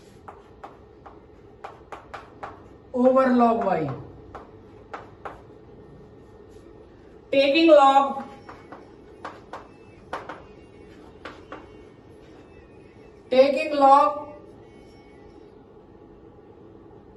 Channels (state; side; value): identical; both; correlation 1.00